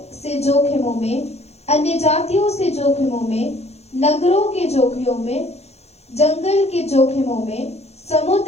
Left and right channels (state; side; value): late; right; 0.31 ms